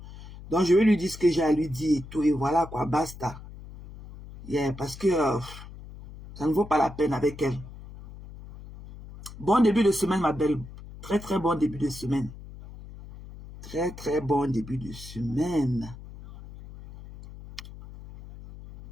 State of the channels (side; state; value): left; noise; hum, 15 dB below the sound